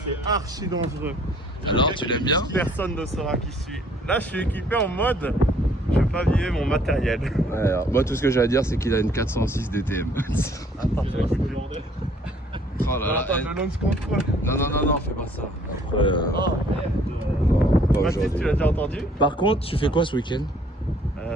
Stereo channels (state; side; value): normal; both; correlation 0.60